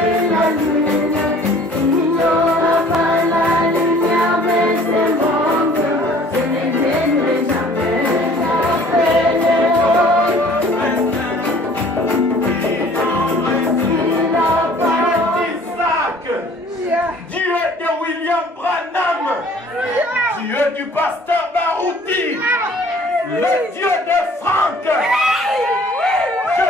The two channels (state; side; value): normal; both; correlation 0.53